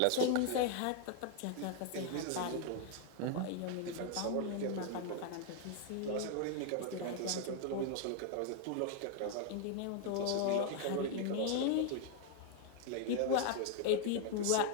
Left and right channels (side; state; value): both; different; correlation 0.00